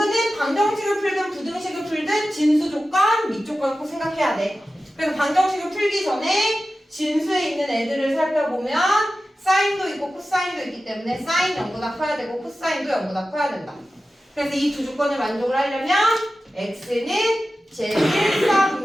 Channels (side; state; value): both; normal; correlation 0.94